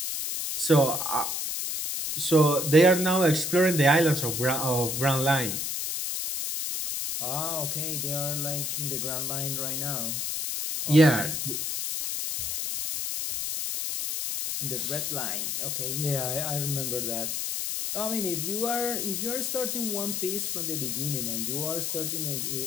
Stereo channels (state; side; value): noise; left; hiss, 2 dB below the sound